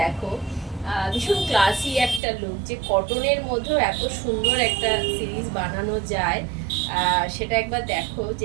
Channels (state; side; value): drops out; left; at 2.2 s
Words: ভীষণ ক্লাসি একটা লুক, যে কটনের মধ্যেও এত সুন্দর একটা সিরিজ বানানো যায় সেটা একবার দেখো।